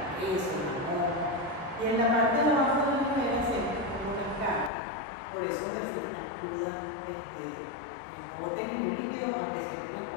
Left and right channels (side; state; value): right; drops out; at 4.7 s